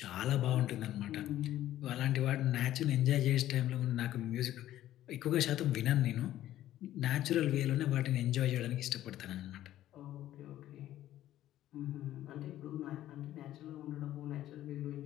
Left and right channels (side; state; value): right; quieter; 13.3 dB